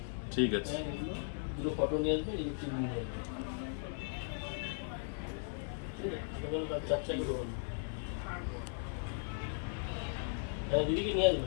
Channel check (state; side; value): silent; right; 53 dB below the other